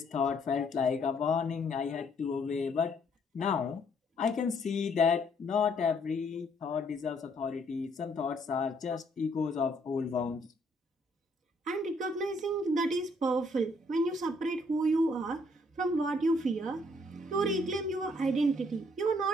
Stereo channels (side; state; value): both; normal; correlation 0.67